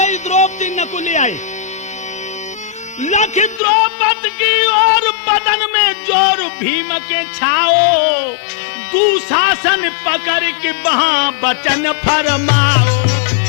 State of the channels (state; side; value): drops out; right; at 3.6 s